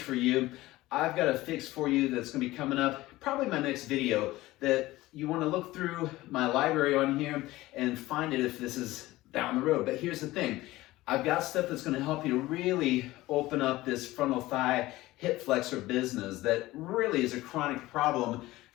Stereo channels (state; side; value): quieter; right; 17.9 dB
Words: for you, I've got a fix for you that's going to be coming up probably my next video, that you want to look through my library on here and find it if this is down the road. But here's the thing. I've got stuff that's going to help you to really open up this frontal thigh hip flexor business that really is a chronic problem,